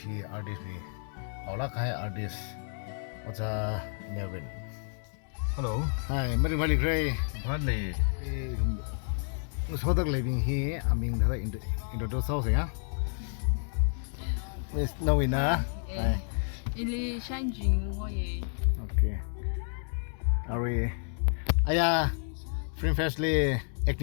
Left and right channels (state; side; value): silent; right; 57 dB below the other